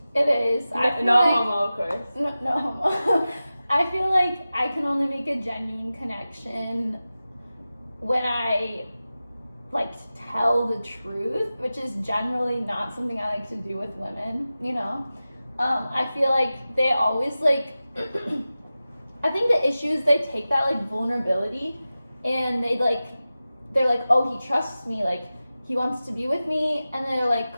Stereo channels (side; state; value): both; inverted; correlation -0.95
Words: it is. No homo, of course. No homo. I feel like I can only make a genuine connection when I like to tell the truth, which is generally not something I like to do with women, you know? I feel like they always like, I think the issue is they take that like vulnerability and they're like, oh, he trusts me, like he wants to be with me, and they're